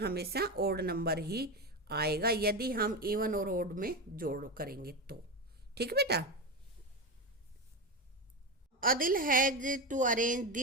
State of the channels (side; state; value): both; normal; correlation 0.16